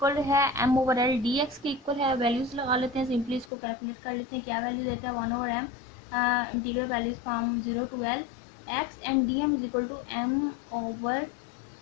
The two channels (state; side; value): drops out; right; at 3.5 s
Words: है m/l dx के इक्वल है। वैल्यूज लगा लेते हैं, सिंपली इसको कैलकुलेट कर लेते हैं क्या वैल्यू देता है। 1/m integral values from 0 to l x and dm is equal to m/l